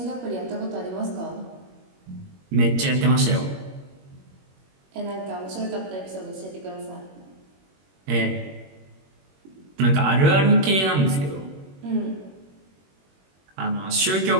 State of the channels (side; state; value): left; late; 21 ms